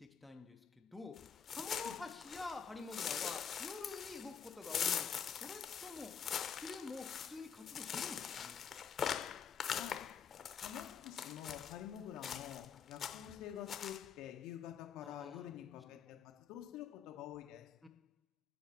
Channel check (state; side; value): quieter; right; 7.2 dB